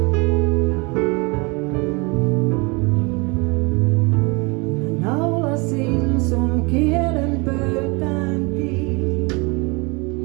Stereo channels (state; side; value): quieter; left; 28.4 dB